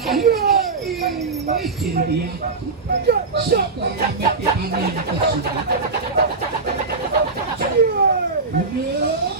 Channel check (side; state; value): left; quieter; 4.1 dB